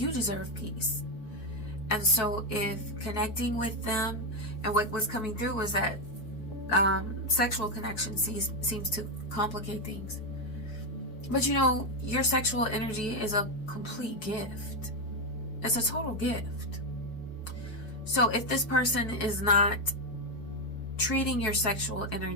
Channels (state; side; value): late; right; 4.7 ms